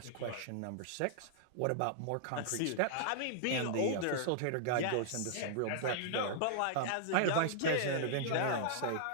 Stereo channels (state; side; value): different; both; correlation -0.01